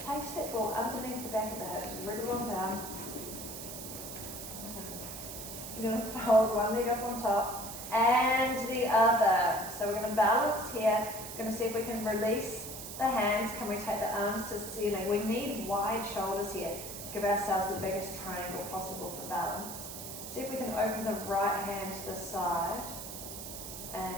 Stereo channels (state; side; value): noise; right; hiss, 9 dB below the sound